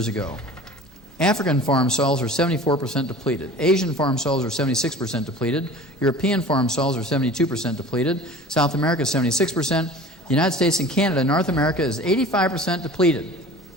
ago. African farm soils are 74% depleted. Asian farm soils are 76% depleted. European farm soils are 72% depleted. South America is 76%. The United States and Canada, North America is 85% depleted.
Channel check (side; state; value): both; normal; correlation 0.41